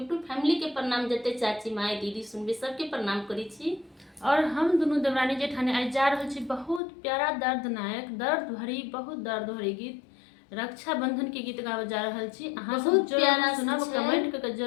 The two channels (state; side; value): drops out; right; at 6.8 s